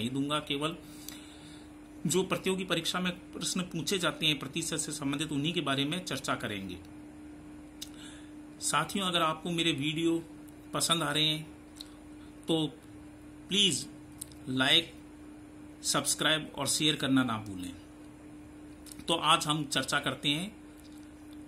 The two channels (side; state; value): both; identical; correlation 1.00